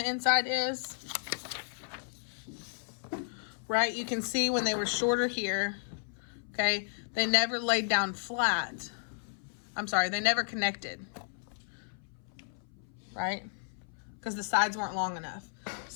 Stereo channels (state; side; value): silent; right; 56 dB below the other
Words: inside is. Right, you can see when they were shorter here, okay, they never laid down flat. I'm sorry, they never connected, right? Because the sides weren't long enough.